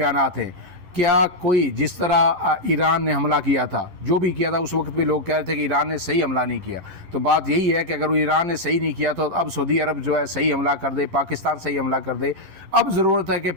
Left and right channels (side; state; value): left; late; 11 ms